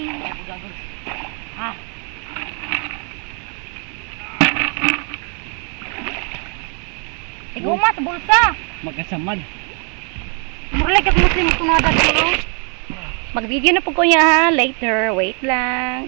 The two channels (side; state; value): left; quieter; 37.7 dB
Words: Ah. Ikaw ma sa bulsa. Magkasamad. Murag kag Muslim kunada dito. Mag-video na po ko niya ha. Later. Wait